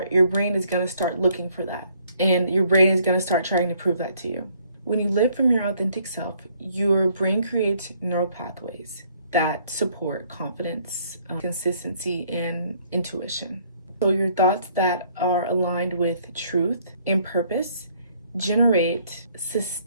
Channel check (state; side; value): inverted; both; correlation -0.64